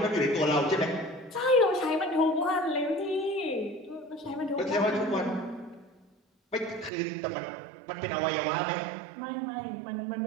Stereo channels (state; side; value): drops out; left; at 6.9 s